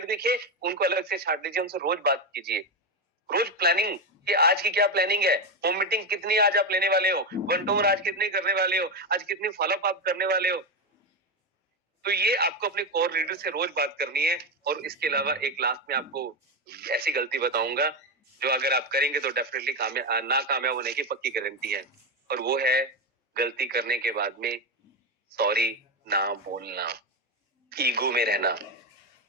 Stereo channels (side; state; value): both; normal; correlation 0.12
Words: दिखे उनको अलग से छांट लीजिए, उनसे रोज बात कीजिए। रोज प्लानिंग कि आज की क्या प्लानिंग है, होम मीटिंग कितनी आज आप लेने वाले हो, वन टू वन आज कितनी करने वाले हो, आज कितनी फॉलोअप आप करने वाले हो। तो ये आपको अपने कोर लीडर से रोज बात करनी है। और इसके अलावा एक लास्ट में आपको ऐसी गलती बताऊंगा जो अगर आप करेंगे तो डेफिनेटली ना कामयाब होने की पक्की गारंटी है। और वो है गलती करने के बाद में सॉरी ना बोलना, ईगो में रहना,